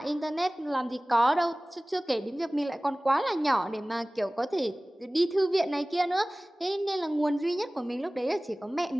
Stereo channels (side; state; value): both; normal; correlation 0.98